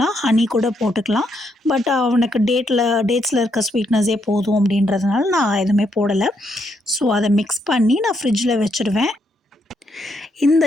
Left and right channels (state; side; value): normal; both; correlation 0.76